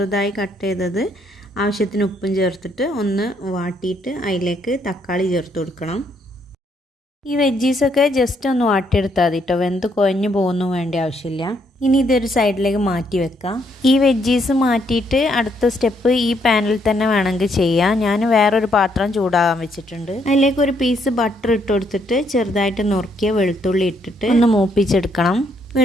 കട്ട് ചെയ്തത് ആവശ്യത്തിന് ഉപ്പും ചേർത്തിട്ട് ഒന്ന് വാട്ടിയിട്ട് അതിലേക്ക് തക്കാളി ചേർത്ത് കൊടുക്കണം. ഈ വെജീസൊക്കെ ജസ്റ്റ് ഒന്ന് വാട്ടിയെടുത്താൽ മതി കേട്ടോ, വെന്ത് കുഴഞ്ഞു പോകുന്നു വേണ്ട ആവശ്യമില്ല. ഇനി ഇതൊരു സൈഡിലേക്ക് മാറ്റി വെക്കാം. ഈ വെജീസ് മാറ്റിയിട്ട് അടുത്ത സ്റ്റെപ്പ് ഈ പാനിൽ തന്നെ വേണമെങ്കിൽ ചെയ്യാം. ഞാൻ വേറൊരു പാത്രം ചൂടാകാൻ വെച്ചിട്ടുണ്ട്. അതിലേക്ക് ഒരു പീസ് ബട്ടർ ഇട്ട് കൊടുത്തിട്ട് ചെറുതായിട്ട് നുറുക്കിയ വെളുത്തുള്ളി ഇട്ടിട്ട് ഒന്ന് മൂപ്പിച്ചെടുക്കണം.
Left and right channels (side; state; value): both; normal; correlation 0.72